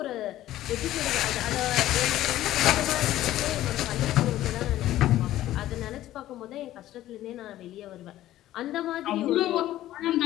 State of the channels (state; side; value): quieter; right; 14.1 dB